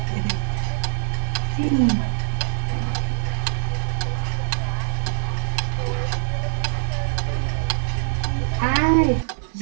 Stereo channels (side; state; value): left; silent; digital silence